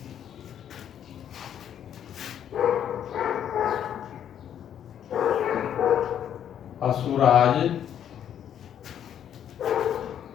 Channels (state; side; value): quieter; right; 9.6 dB